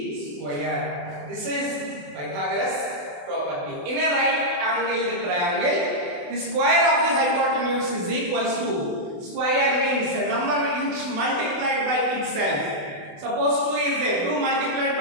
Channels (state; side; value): late; left; 28 ms